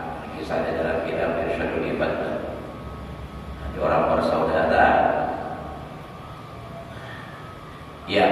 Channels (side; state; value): both; identical; correlation 1.00